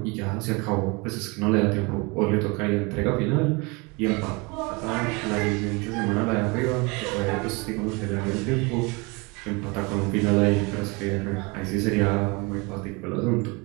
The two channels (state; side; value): quieter; left; 27.8 dB